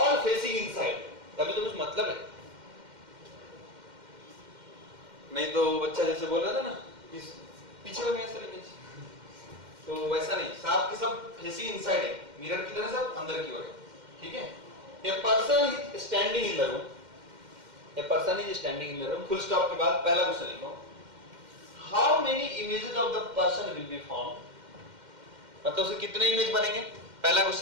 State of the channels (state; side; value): late; left; 2.1 ms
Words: फेसिंग इनसाइड, तभी तो कुछ मतलब है। नहीं तो बच्चा जैसे बोल रहा था ना इस पीछे हो गया सर इमेज, तो वैसा नहीं, सब के सब फेसिंग इनसाइड है, मिरर की तरह सब अंदर की ओर है, ठीक है। A person is standing in the room, a person is standing in the room, full stop के बाद पहला क्वेश्चन लिखो, how many images of the person will be formed, मतलब उसे कितने इमेज बनेंगे, पहला